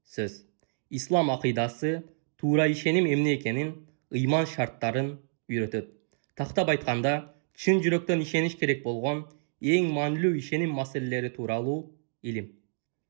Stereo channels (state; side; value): silent; left; digital silence